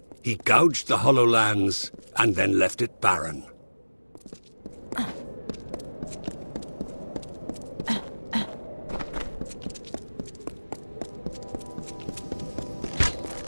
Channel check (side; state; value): both; inverted; correlation -1.00